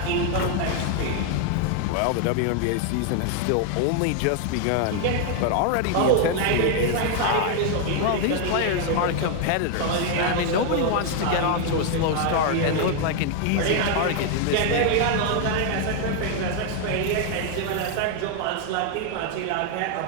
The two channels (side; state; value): both; different; correlation 0.01